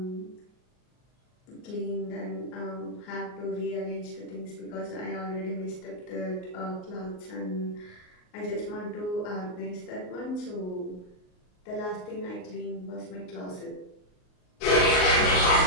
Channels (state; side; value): late; right; 38 ms